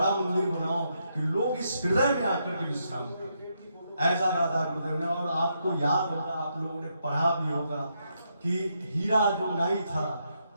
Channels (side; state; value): both; inverted; correlation -0.79